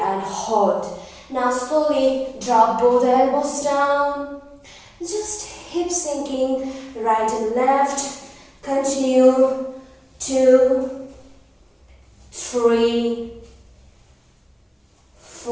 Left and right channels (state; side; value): identical; both; correlation 1.00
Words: and hold. Now slowly drop both elbows down. Just hip sinking, right and left. Continue. 2, 3,